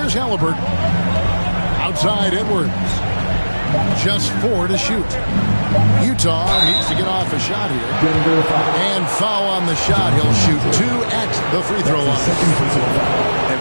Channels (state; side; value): inverted; both; correlation -1.00